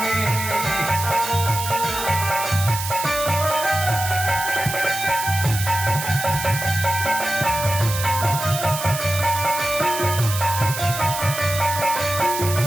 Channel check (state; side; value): noise; right; hiss, 6 dB below the sound